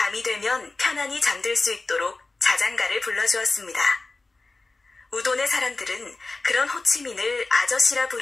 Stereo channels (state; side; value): quieter; right; 3.4 dB